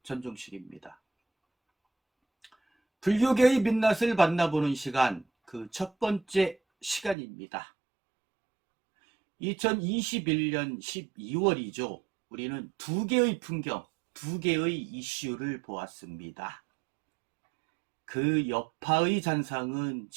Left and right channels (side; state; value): left; drops out; at 7.2 s